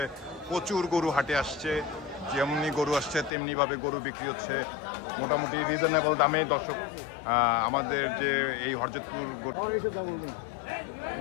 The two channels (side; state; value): right; drops out; at 3.3 s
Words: প্রচুর গরু হাটে আসছে, যেমনি গরু আসছে তেমনি ভাবে গরু বিক্রি হচ্ছে, মোটামুটি রিজনেবল দামে। দর্শক, আমাদের যে এই হরজতপুর গরু